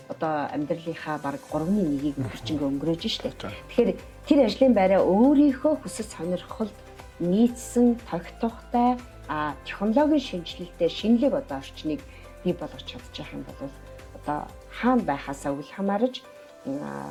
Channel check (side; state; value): both; identical; correlation 1.00